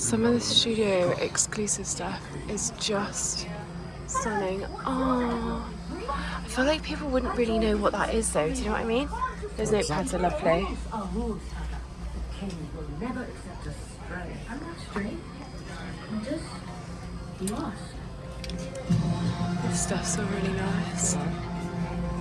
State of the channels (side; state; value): both; identical; correlation 1.00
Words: of the studio exclusive stuff is just stunning. Oh, I feel like people wouldn't really know what that is though, do you know what I mean? Those notepads are lovely. This stuff's all really nice.